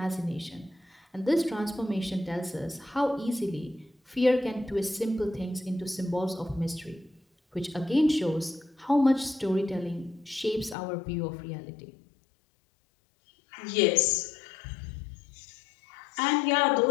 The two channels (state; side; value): drops out; right; at 10.8 s